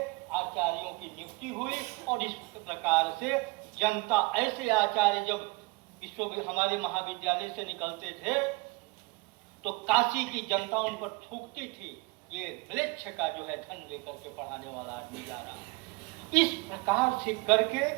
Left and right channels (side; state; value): left; quieter; 25.6 dB